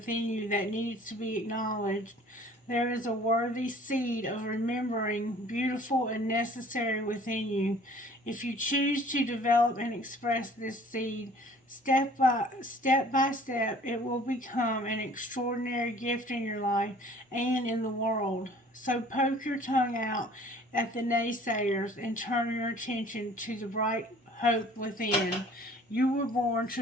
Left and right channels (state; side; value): normal; both; correlation 0.52